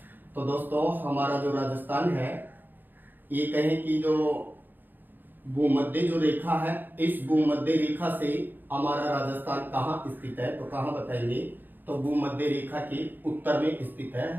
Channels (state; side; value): late; left; 0.090 ms